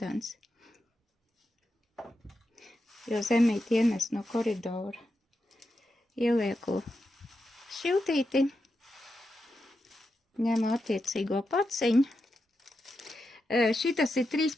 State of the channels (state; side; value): normal; both; correlation 0.87